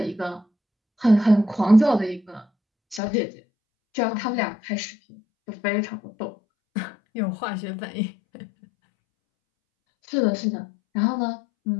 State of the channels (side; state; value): right; drops out; at 3.0 s